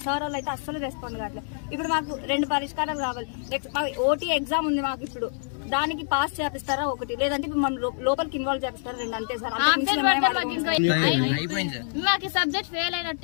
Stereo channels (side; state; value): right; silent; digital silence